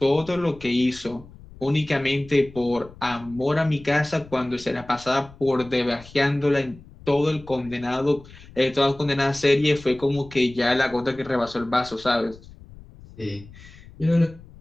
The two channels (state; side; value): noise; left; rumble, 20 dB below the sound